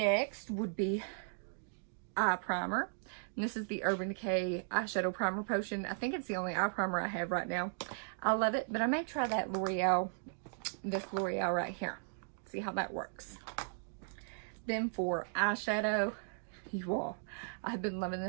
would be eye primer. And this is the Urban Decay Eyeshadow Primer Potion. I think it's the only eye primer I have right now. I love it, but I may try that L'Oreal, this L'Oreal right here. See how that works. Then for eyeshadow, you all, I've been loving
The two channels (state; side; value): silent; left; digital silence